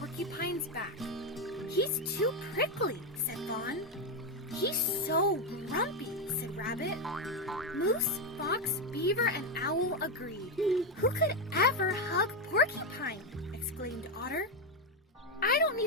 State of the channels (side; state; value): both; normal; correlation 0.07